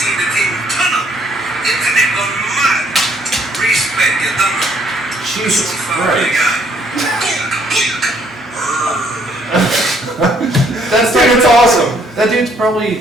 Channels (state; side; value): normal; both; correlation 0.66